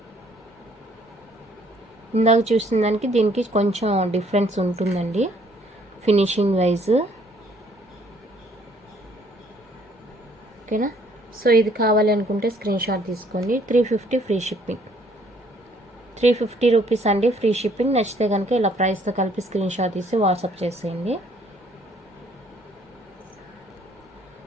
ఇందాక చూసిన దానికి దీనికి కొంచెం డిఫరెన్స్ ఉంటుందండి ఫినిషింగ్ వైజ్. ఓకేనా. సో ఇది కావాలి అనుకుంటే స్క్రీన్ షాట్ తీసుకోండి. 350 ఫ్రీ షిప్పింగ్. 350 రూపీస్ అండి ఫ్రీ షిప్పింగ్. నచ్చితే కనుక ఇలా ప్రైస్తో కలిపి స్క్రీన్ షాట్ తీసి వాట్సాప్ చేసేయండి.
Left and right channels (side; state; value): both; normal; correlation 0.63